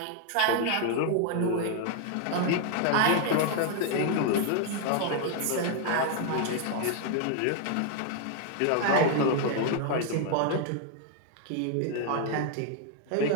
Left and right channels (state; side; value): different; both; correlation 0.00